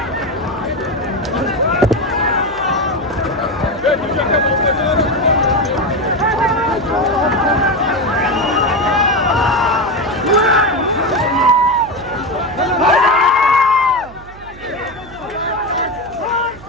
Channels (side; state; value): right; noise; hum, 19 dB below the sound